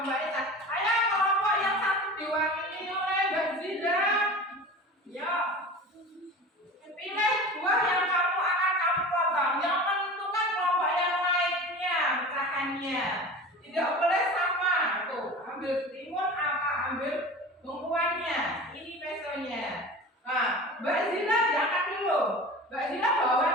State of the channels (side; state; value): both; normal; correlation 0.35